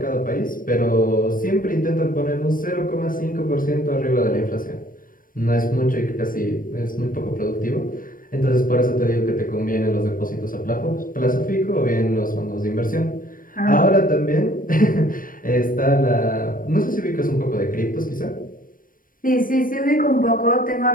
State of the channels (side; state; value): right; late; 0.40 ms